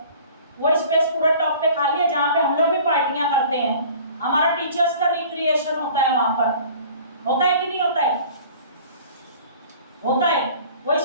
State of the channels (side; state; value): both; inverted; correlation -0.47